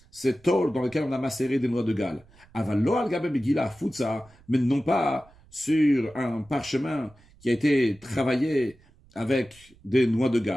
ces tôles dans lesquelles on a macéré des noix de Galles. Avalo al-gaben begila futsa, mais non pas sur un parchemin qui a été travaillé avec des noix de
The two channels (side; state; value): right; noise; rumble, 28 dB below the sound